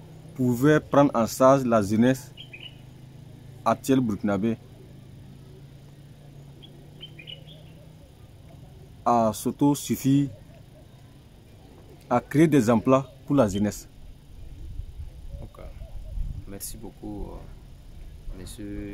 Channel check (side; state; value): both; identical; correlation 1.00